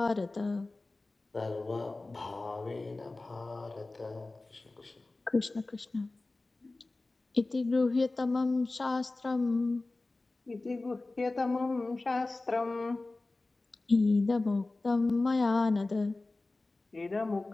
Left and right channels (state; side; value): quieter; right; 3.2 dB